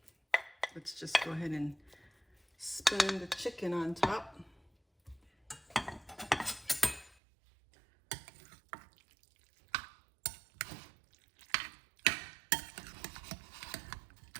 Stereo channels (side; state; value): left; drops out; at 7.2 s